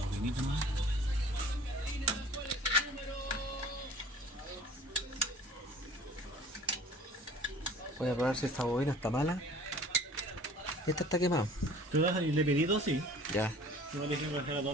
poquito más. Voy a probar si esta bobina está mala. Esta está quemada. ¿Tú vas a le pedí dos? Sí. Ya. No le dije que fuera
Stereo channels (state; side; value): normal; both; correlation 0.47